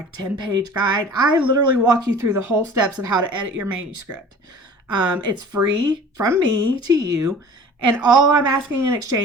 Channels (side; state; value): both; normal; correlation 0.44